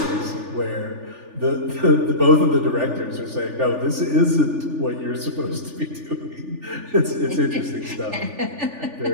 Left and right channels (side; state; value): left; late; 3.4 ms